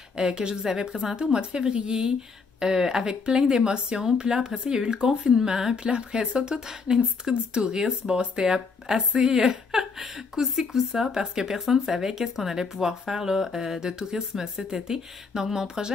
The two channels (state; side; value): quieter; right; 4.8 dB